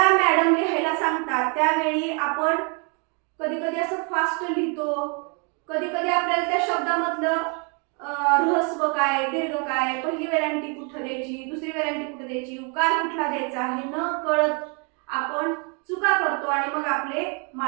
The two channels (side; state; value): left; quieter; 35.8 dB